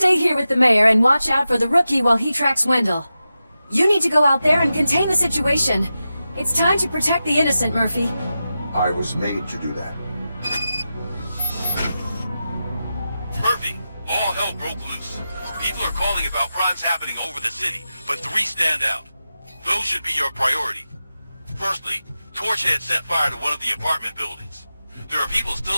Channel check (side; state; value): both; inverted; correlation -0.92